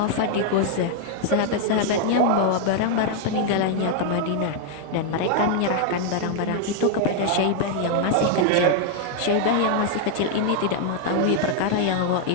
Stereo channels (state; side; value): different; both; correlation 0.00